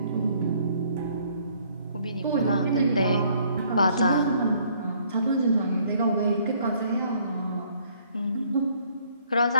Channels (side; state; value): both; inverted; correlation -0.63